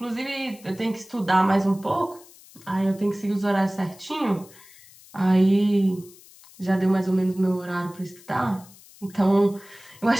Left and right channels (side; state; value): left; noise; hiss, 23 dB below the sound